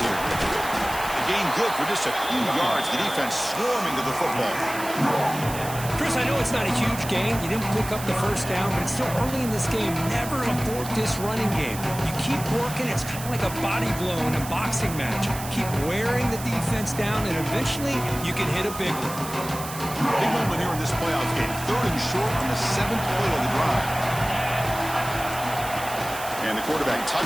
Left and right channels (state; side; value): noise; right; hiss, 11 dB below the sound